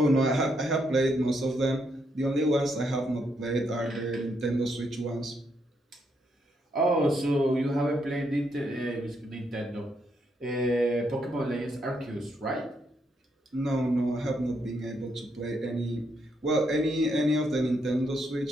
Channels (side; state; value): both; normal; correlation 0.77